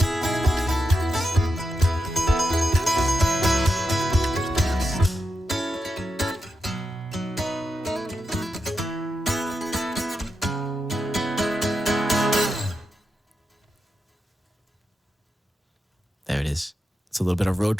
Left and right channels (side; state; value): both; normal; correlation 0.87